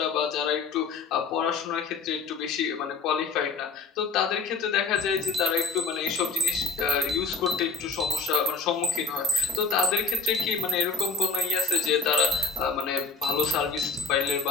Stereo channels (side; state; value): right; quieter; 4.6 dB